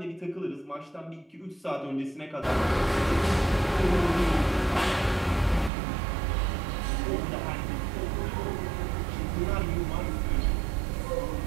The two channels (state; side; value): drops out; left; at 5.7 s